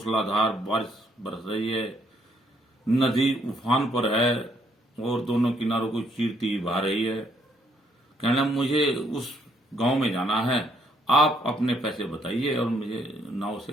बारिश बरस रही है, नदी उफान पर है और दोनों किनारों को चीरती बहा रही है। कहना मुझे उस गांव में जाना है, आप अपने पैसे बताइए और मुझे नाव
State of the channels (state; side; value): normal; both; correlation 0.70